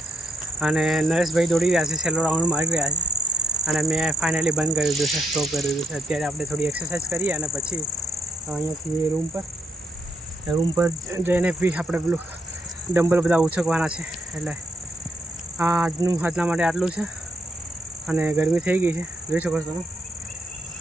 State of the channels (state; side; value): normal; both; correlation 0.75